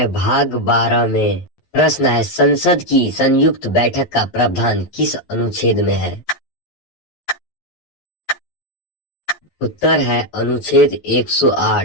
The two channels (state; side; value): late; right; 11 ms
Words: भाग 12 में। प्रश्न है संसद की संयुक्त बैठक का प्रावधान किस अनुच्छेद में है? उत्तर है अनुच्छेद